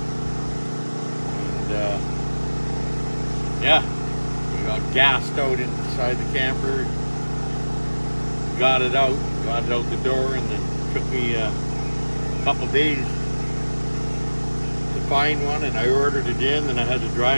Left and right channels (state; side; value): inverted; both; correlation -1.00